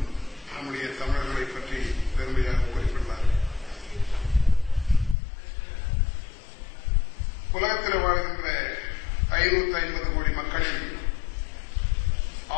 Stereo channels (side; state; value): right; drops out; at 5.2 s